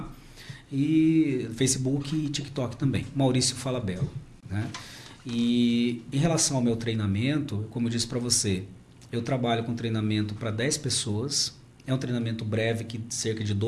E Facebook e TikTok também, Maurício Falabella, né? E em relação ao meu treinamento, como eu disse para você, eu trabalho com treinamento para 10 pessoas, é um treinamento breve, que cerca de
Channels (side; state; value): both; identical; correlation 1.00